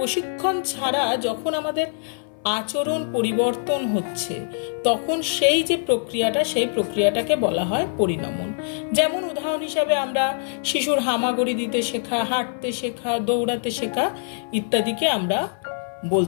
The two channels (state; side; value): silent; right; 62 dB below the other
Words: ছাড়া যখন আমাদের আচরণ পরিবর্তন হচ্ছে, তখন সেই প্রক্রিয়াটাকে বলা হয় পরিণমন। যেমন উদাহরণ হিসাবে আমরা শিশুর হামাগুড়ি দিতে শেখা, হাঁটতে শেখা, দৌড়াতে শেখা ইত্যাদিকে আমরা